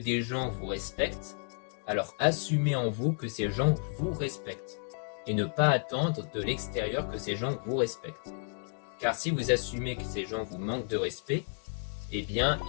gens vous respectent, alors assumez en vous que ces gens vous respectent et ne pas attendre de l'extérieur que ces gens vous respectent. Car si vous assumez que ces gens vous manquent de respect, eh bien,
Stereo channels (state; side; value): silent; right; 56 dB below the other